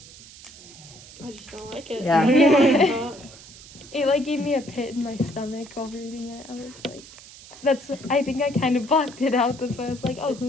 I just don't like it. Yeah. Yeah. It gave me a pit in my stomach while reading it. I was like, I think I kind of blocked it out. That's why I was like, oh,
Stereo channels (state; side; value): noise; right; hiss, 19 dB below the sound